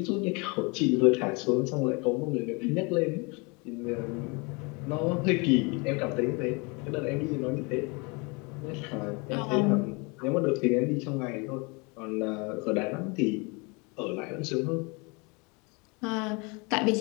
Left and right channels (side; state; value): right; quieter; 29.8 dB